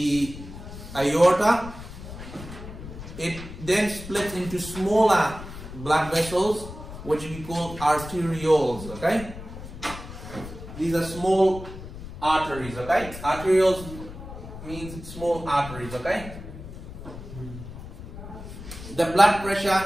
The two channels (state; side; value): noise; left; rumble, 12 dB below the sound